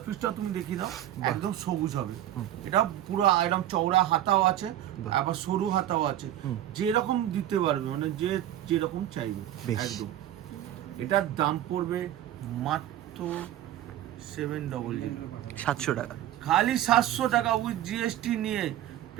পিসটা তুমি দেখিয়ে দাও, একদম সবুজ হবে। এটা পুরো একদম চওড়া হাতাও আছে, বাহ। আবার সরু হাতাও আছে, হুম। যেরকম দিতে পারবে, মানে যে যেরকম চাইবে বেশ। একদম। এটার দাম পড়বে মাত্র 700, 700 টাকা। খালি 700 টাকা উইথ জিএসটি নিয়ে,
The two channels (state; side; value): quieter; left; 12.4 dB